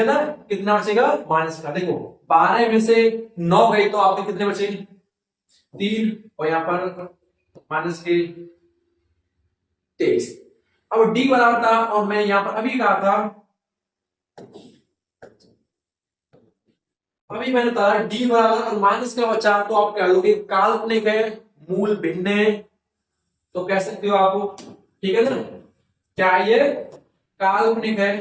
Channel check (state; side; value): identical; both; correlation 1.00